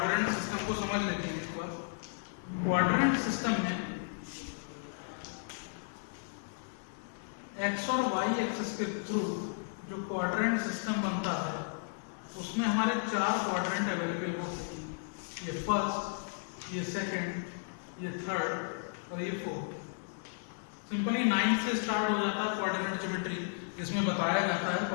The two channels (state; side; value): silent; right; digital silence